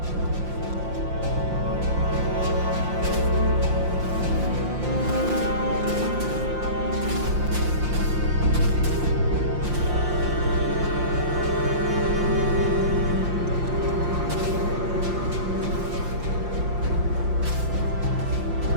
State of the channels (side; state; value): left; late; 5.7 ms